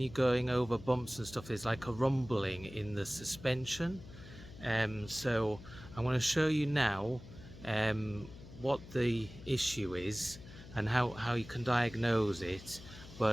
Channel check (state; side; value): noise; left; hum, 16 dB below the sound